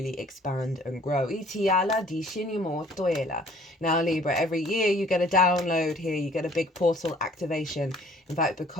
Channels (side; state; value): both; normal; correlation 0.56